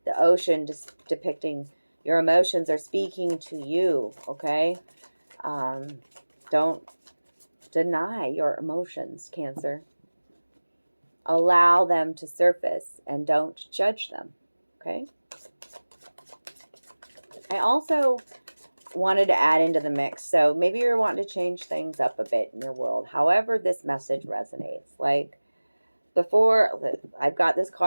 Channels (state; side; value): inverted; both; correlation -1.00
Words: The ocean just depicting your emotions are speaking to you, okay? Don't deny your emotions, Cancer. Allow them to surface and don't judge them, okay? I also wanted to add into the mix, so maybe you're wanting to change things up a bit in your world. However this message resonates. Like before, I've got this